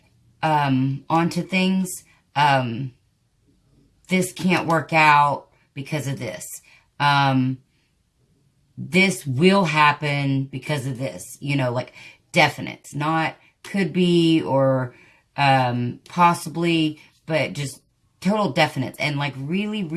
onto things. This can't work out because of this. This will happen because of this. You know, like definites, not could be or possibly, but just total definites. And like really,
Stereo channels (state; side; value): identical; both; correlation 1.00